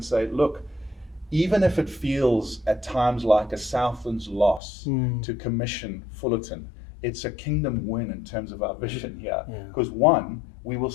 say, look, even if it feels at times like a Southlands loss to commission Fullerton, it's a kingdom win in terms of our vision here. Yeah. Because one, we will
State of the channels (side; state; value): right; drops out; at 4.6 s